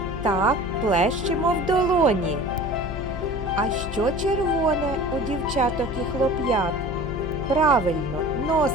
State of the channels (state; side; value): noise; left; hum, 8 dB below the sound